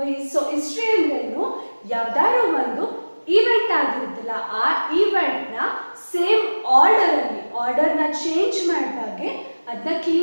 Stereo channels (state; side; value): inverted; both; correlation -1.00